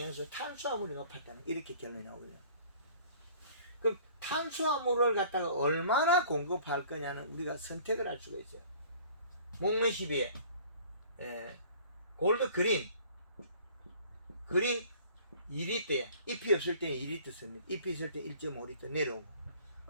탄수화물이 높았다는 이렇게 결론이 나오거든요. 그럼 탄수화물을 갖다가 얼마나 공급할 거냐는 우리가 선택을 할 수가 있어요. 목매시비에 골드 그린 2리터에 잎이 없을 때는 2리터 씁니다. 잎이 있을 때 1.5리터 내려오고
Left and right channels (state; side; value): inverted; both; correlation -0.50